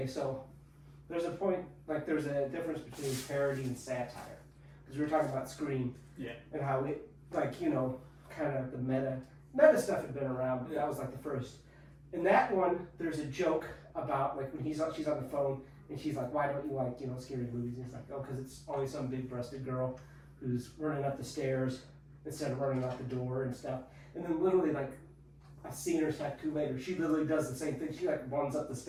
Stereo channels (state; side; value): identical; both; correlation 1.00